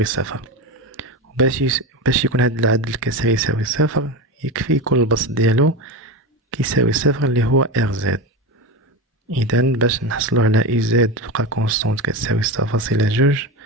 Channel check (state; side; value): normal; both; correlation 0.21